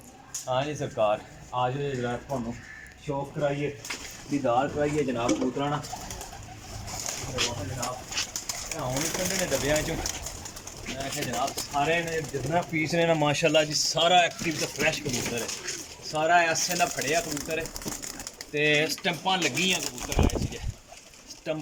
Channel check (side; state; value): both; identical; correlation 1.00